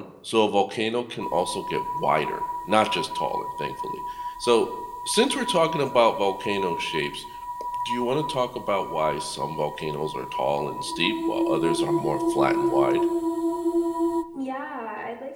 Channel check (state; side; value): identical; both; correlation 1.00